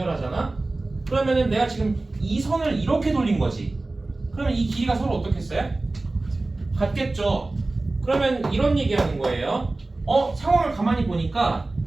그러면은 내가 지금 이 선을 이렇게 돌린 거지. 그러면 이 길이가 서로 어떻겠어요? 같겠죠. 그러면 이런 얘기하는 거예요. 상황을 가만히 보니까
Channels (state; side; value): quieter; left; 3.1 dB